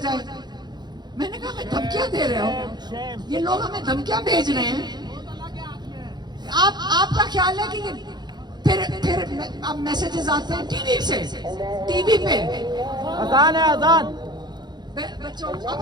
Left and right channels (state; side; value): late; left; 0.21 ms